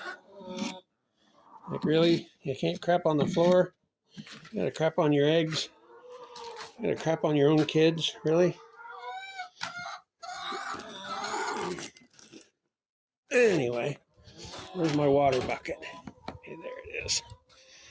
Like, really? You can't crap on the floor? You gotta crap on your eggs? You gotta crap on your own kids? Really? Anyway, where's my water bucket? Okay, there it is.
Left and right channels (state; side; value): identical; both; correlation 1.00